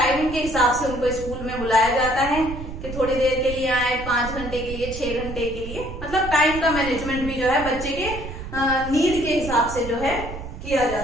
के हिसाब से उनको स्कूल में बुलाया जाता है कि थोड़ी देर के लिए आए, 5 घंटे के लिए, 6 घंटे के लिए, मतलब टाइम का मैनेजमेंट भी जो है बच्चे के नीड के हिसाब से जो है किया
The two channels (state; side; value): noise; right; rumble, 9 dB below the sound